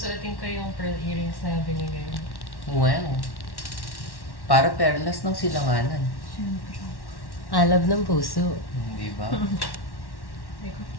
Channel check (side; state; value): right; late; 1.1 ms